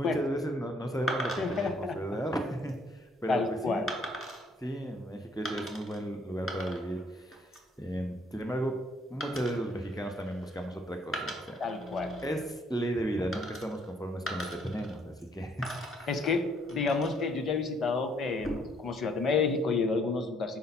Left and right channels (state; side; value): normal; both; correlation 0.66